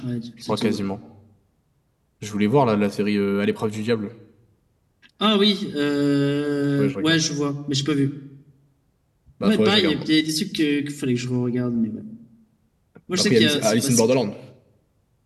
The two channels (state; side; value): identical; both; correlation 1.00